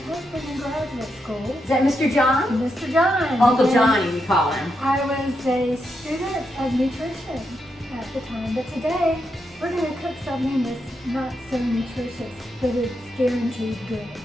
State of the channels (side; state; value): both; normal; correlation 0.83